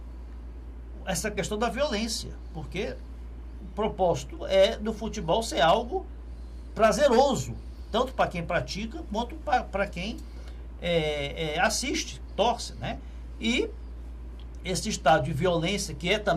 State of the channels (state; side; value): identical; both; correlation 1.00